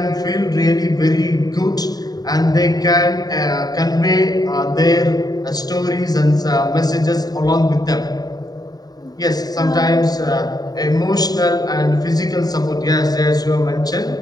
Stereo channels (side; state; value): right; late; 0.19 ms